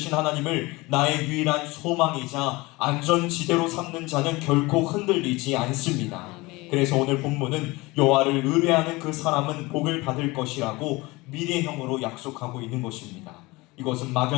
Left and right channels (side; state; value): right; quieter; 22.5 dB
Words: 하나님을 나의 유일한 소망이자 안전지대로 삼는 자는 결코 흔들리지 않습니다. 그래서 오늘 본문은 여호와를 의뢰하는 그 사람은 복을 받을 것이라고 미래형으로 약속하고 있는 것입니다. 이것은